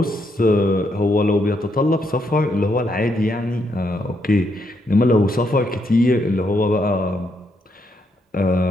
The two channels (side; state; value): both; normal; correlation 0.77